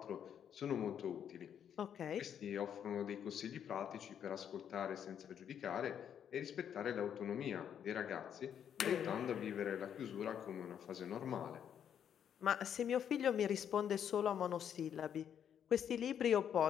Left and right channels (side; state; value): right; quieter; 8.8 dB